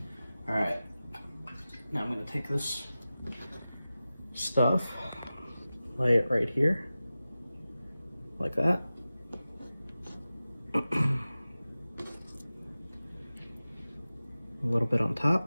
right, now I'm gonna take this stuff, lay it right here, like that. A little bit on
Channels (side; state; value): both; inverted; correlation -0.95